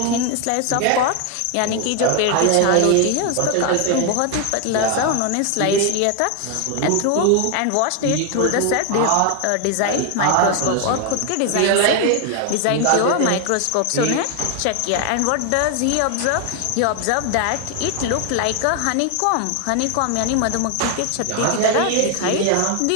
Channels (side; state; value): both; different; correlation 0.01